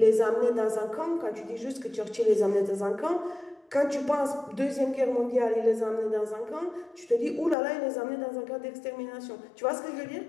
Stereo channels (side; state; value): right; drops out; at 7.6 s